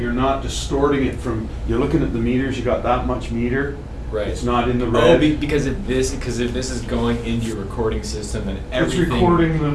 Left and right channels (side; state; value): both; identical; correlation 1.00